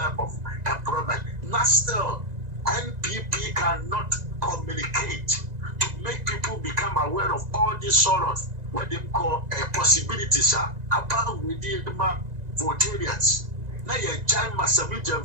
of employment. Not still. NPP cannot communicate to make people become aware of all these sort of what they call possibilities about within the Votarians. Now you join Massavage and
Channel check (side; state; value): left; late; 1.9 ms